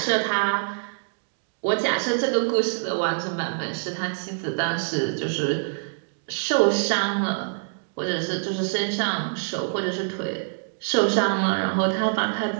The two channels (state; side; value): silent; left; digital silence